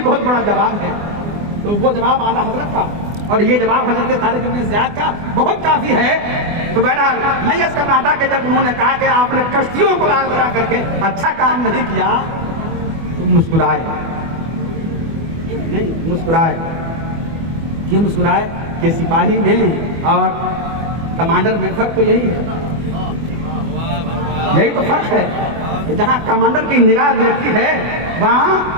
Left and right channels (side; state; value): left; late; 24 ms